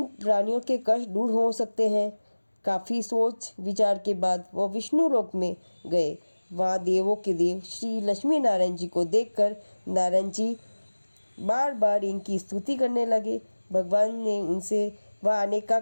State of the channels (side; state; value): both; inverted; correlation -1.00